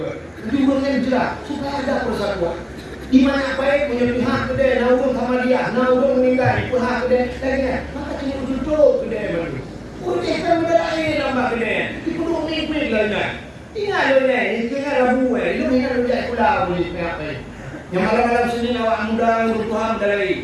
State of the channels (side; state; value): both; identical; correlation 1.00